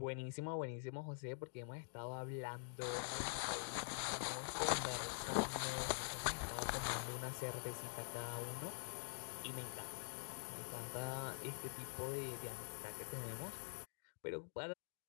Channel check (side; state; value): right; silent; digital silence